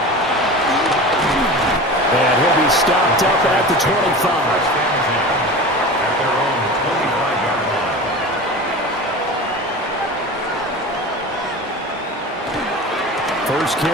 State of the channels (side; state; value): both; normal; correlation 0.32